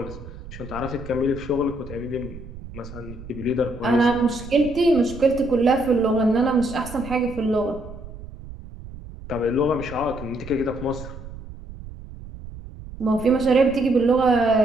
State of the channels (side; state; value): right; noise; rumble, 14 dB below the sound